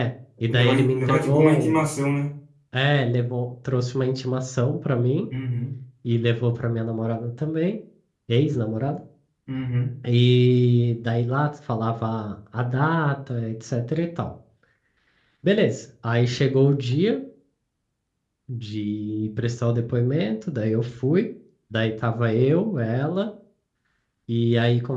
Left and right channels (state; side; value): identical; both; correlation 1.00